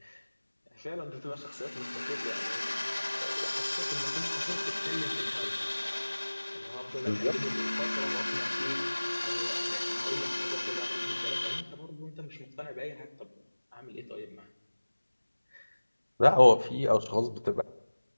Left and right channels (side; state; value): both; inverted; correlation -1.00